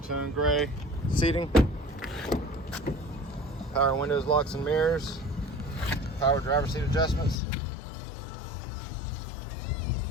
gray seating. Power windows, locks and mirrors. Power driver seat adjustments.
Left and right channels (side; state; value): right; drops out; at 7.4 s